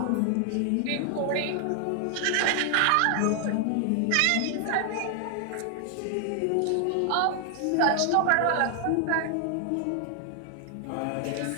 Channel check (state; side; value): different; both; correlation 0.00